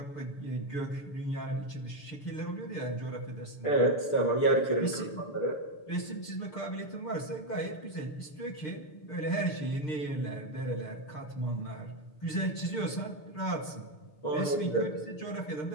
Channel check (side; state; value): right; late; 6.6 ms